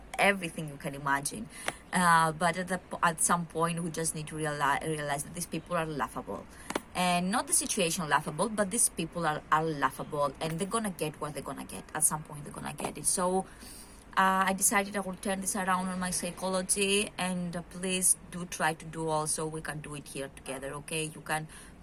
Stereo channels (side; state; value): both; identical; correlation 1.00